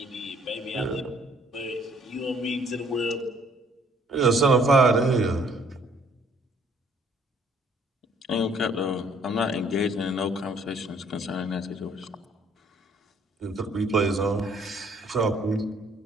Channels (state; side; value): normal; both; correlation 0.62